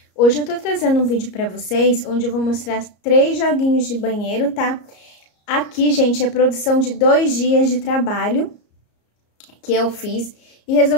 Hoje eu tô trazendo um vídeo pra vocês, onde eu vou mostrar 3 joguinhos de banheiro, tá? Aqui, gente, é produção de 2 dias de trabalho que eu fiz e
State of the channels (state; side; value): late; right; 34 ms